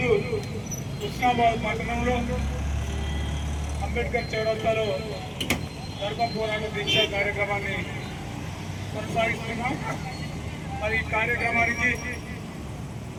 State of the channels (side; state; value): both; identical; correlation 1.00